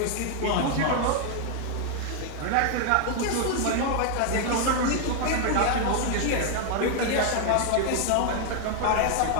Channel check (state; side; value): different; both; correlation 0.00